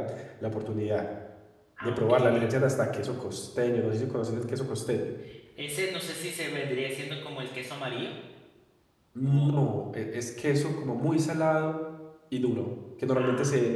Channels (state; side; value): identical; both; correlation 1.00